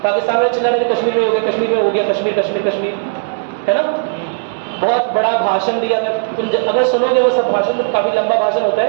पाकिस्तान में चला रहे कश्मीर में हो गया, कश्मीर में हो गया, कश्मीर कश्मीर कश्मीर, है ना। बहुत बड़ा भाषण दिया, तुम अगर सुनोगे वो सब भाषण, काफी लंबा भाषण होता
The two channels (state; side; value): silent; left; 64 dB below the other